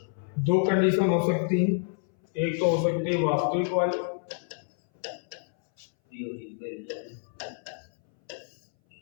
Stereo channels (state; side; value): silent; right; 59 dB below the other